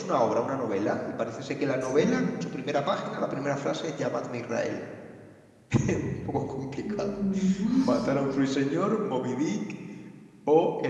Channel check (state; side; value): identical; both; correlation 1.00